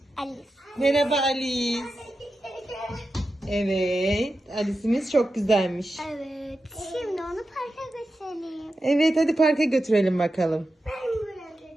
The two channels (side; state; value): both; normal; correlation 0.91